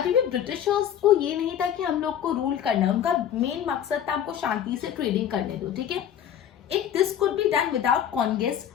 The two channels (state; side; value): quieter; right; 9.7 dB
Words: भी ब्रिटिशर्स को ये नहीं था कि हम लोग को रूल करना है, उनका मेन मकसद था हमको शांति से ट्रेडिंग करने दो, ठीक है। If this could be done without conquest